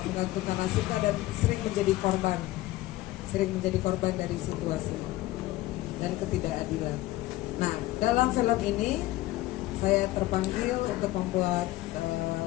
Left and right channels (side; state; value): right; quieter; 17.3 dB